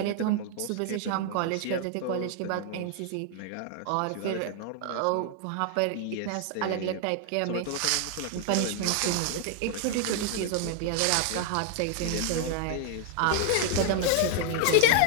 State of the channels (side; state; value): both; different; correlation 0.00